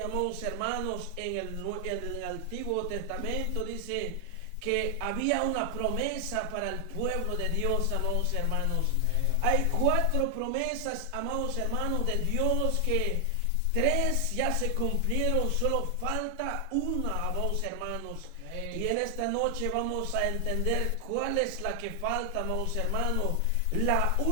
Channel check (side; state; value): both; different; correlation 0.00